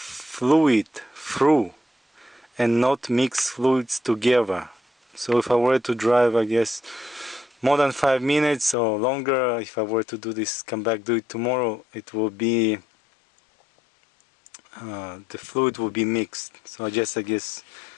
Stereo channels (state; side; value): drops out; right; at 8.8 s